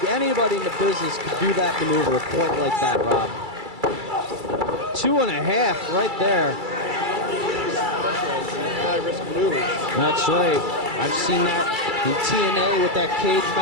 anybody in the business could do that maneuver quite like that, Rob. 2.5 right there. High-risk maneuvers. That's right. I've seen that in TNA with that cage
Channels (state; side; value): late; left; 2.3 ms